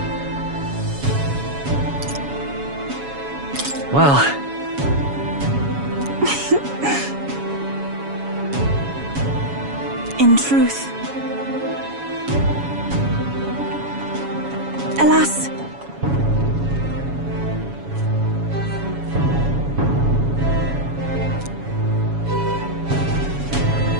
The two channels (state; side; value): late; left; 7.1 ms